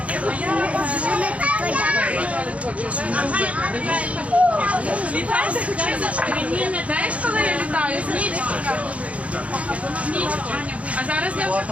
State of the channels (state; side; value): late; left; 0.065 ms